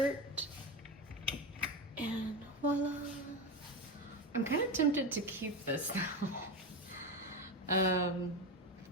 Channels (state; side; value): normal; both; correlation 0.18